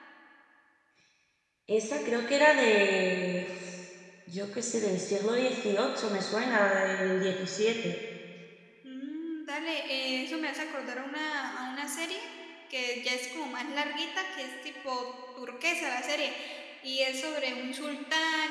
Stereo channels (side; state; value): both; identical; correlation 1.00